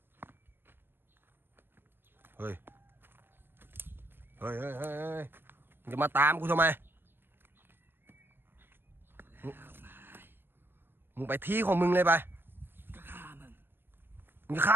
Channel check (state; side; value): late; left; 0.10 ms